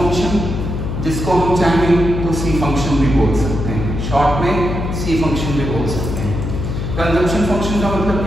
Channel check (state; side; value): noise; left; hum, 3 dB below the sound